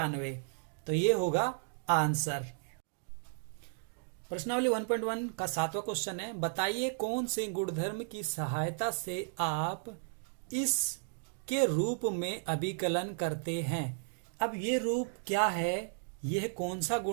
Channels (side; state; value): left; silent; digital silence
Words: तो ये होगा आंसर। प्रश्नावली 1.1 का 7वां क्वेश्चन है, बताइए कौन से गुणधर्म की सहायता से आप इस के रूप में अभिकलन करते हैं। अब ये रूप क्या है, यह कौन सा